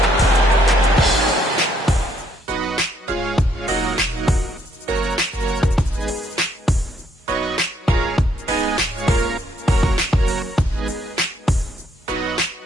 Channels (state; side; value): normal; both; correlation 0.70